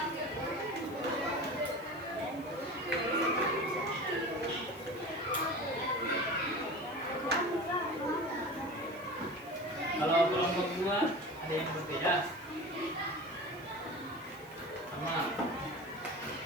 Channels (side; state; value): right; noise; hiss, 24 dB below the sound